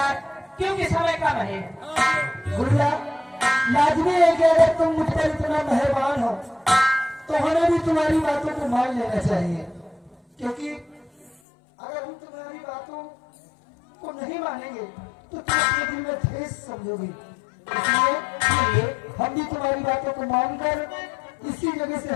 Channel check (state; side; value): drops out; right; at 11.4 s